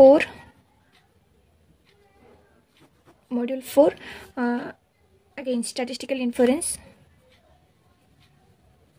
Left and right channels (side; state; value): both; identical; correlation 1.00